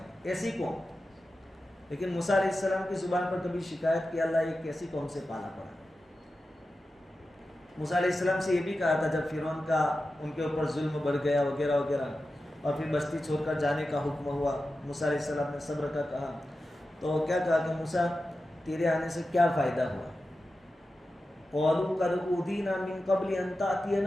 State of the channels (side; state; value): both; normal; correlation 0.92